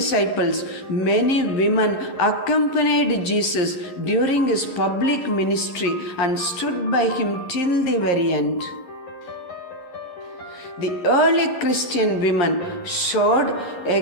many women accompanied Jesus during his public ministry and stood by him till the very end. The early Christian women showed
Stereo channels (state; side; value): late; right; 11 ms